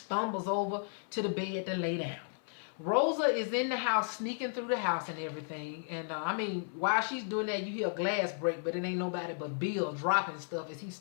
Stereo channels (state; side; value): silent; right; 55 dB below the other